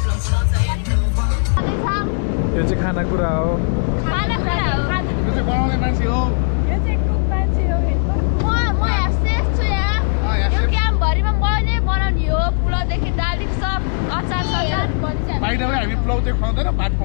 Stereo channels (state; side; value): silent; right; 67 dB below the other